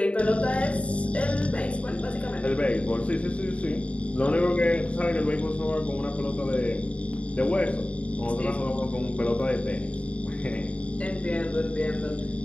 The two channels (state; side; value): late; right; 0.063 ms